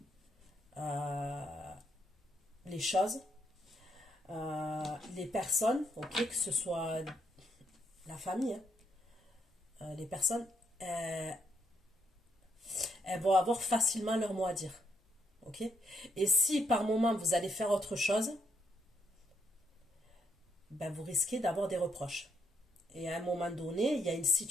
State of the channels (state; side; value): normal; both; correlation 0.76